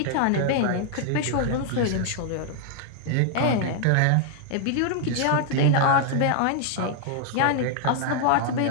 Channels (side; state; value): both; different; correlation 0.00